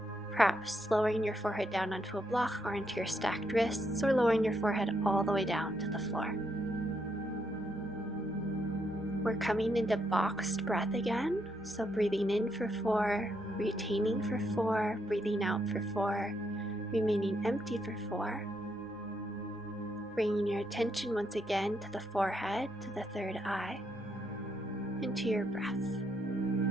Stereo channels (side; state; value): right; noise; rumble, 28 dB below the sound